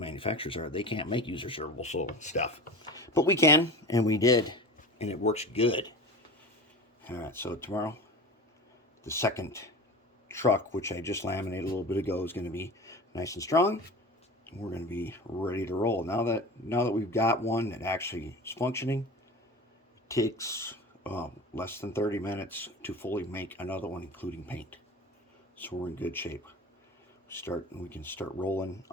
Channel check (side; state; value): both; normal; correlation 0.33